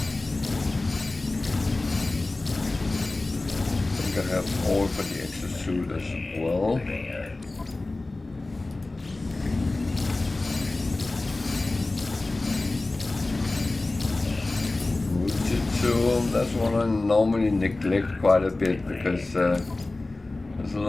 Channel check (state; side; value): quieter; right; 3.0 dB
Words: I think I have all for the exosuit as well. Fujitsu, that's one I normally neglect quite a bit because there's a